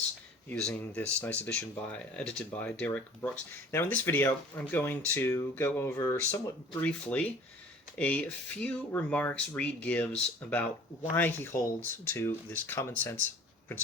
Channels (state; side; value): normal; both; correlation 0.48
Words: using this nice edition edited by Derek Brooks. Now in this video, I'm going to go over somewhat briefly a few remarks Reid gives about why he holds to this common sense